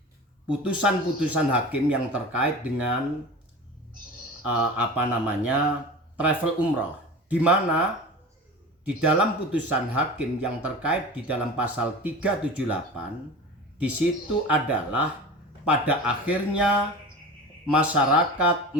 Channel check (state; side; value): normal; both; correlation 0.34